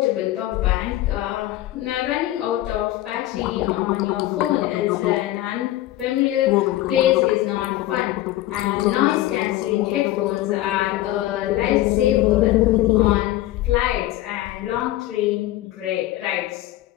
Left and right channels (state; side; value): quieter; right; 15.4 dB